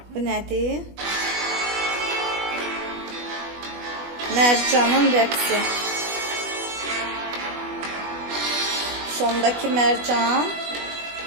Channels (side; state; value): left; late; 20 ms